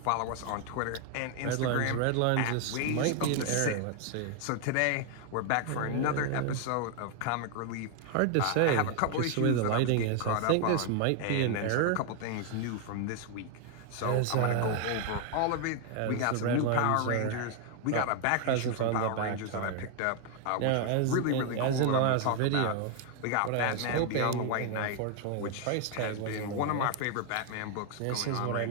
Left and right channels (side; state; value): both; different; correlation 0.00